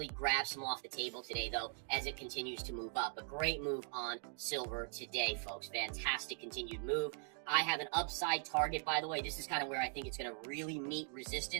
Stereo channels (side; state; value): left; silent; 51 dB below the other